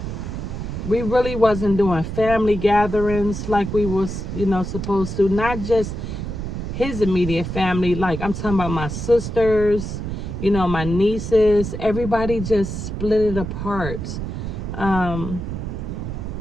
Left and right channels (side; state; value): right; noise; rumble, 5 dB below the sound